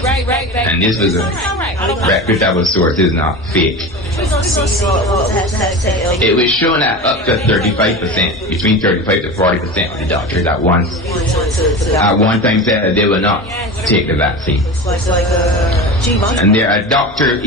and this was a reputable source, is not fake. It was shown that up to 35%, between 35 to 40% of the doctors at one time said that they will not take the vaccine. And there are doctors,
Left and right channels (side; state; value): both; normal; correlation 0.28